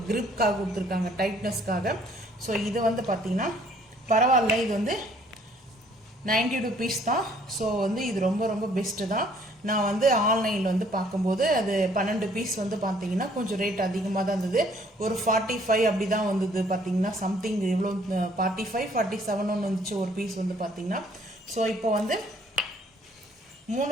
கிரிப்காக கொடுத்துருக்காங்க, டைட்னஸ்க்காக. ஸோ இது வந்து பார்த்தீங்கன்னா பரவாயில்ல. இது வந்து 90 rupees தான். ஸோ வந்து இது ரொம்ப ரொம்ப பெஸ்ட்டு தான். நான் வந்து ஆன்லைனில் வந்து பார்க்கும்போது அது 12 பீஸ் வந்து பார்த்தீங்கன்னா கொஞ்சம் ரேட் அதிகமாக தான் இருந்தது. ஒரு 45 அப்படி தான் வந்தது பார்த்தீங்கன்னா. சம்திங் எவ்வளோ 45, 47 ஒன்று வந்துச்சு ஒரு பீஸ் வந்து பார்த்தீங்கன்னா. ஸோ இப்போ வந்து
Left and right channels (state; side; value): normal; both; correlation 0.61